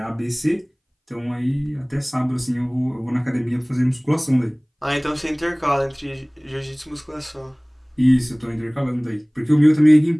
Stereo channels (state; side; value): identical; both; correlation 1.00